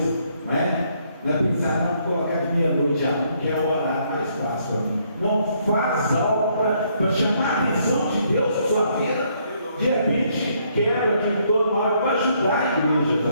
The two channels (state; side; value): inverted; both; correlation -0.70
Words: não é? Não é pensar, não, colocar de meia-noite a 1, que é o horário mais fácil para mim. Não, faz algo para chamar a atenção de Deus na sua vida. De repente, quebra aqui todo mal para ajudar a igreja